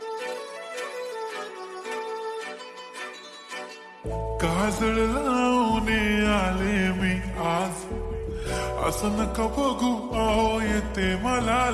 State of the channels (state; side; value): identical; both; correlation 1.00